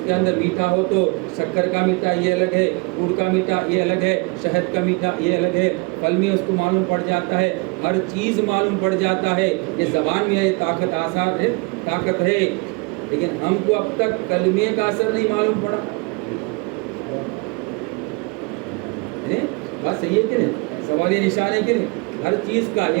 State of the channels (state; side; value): quieter; left; 29.3 dB